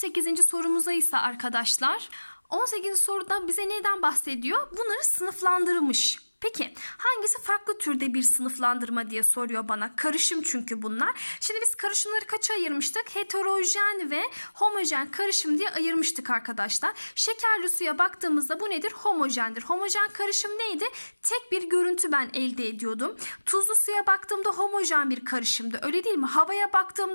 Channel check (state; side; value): inverted; both; correlation -1.00